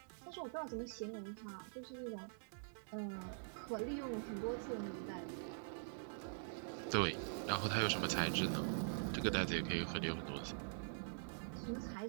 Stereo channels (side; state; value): left; silent; digital silence